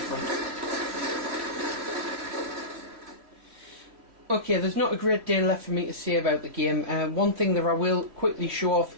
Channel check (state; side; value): late; left; 3.0 ms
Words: Okay, there's not a great deal left for me to say about the game. One thing that I will quickly show off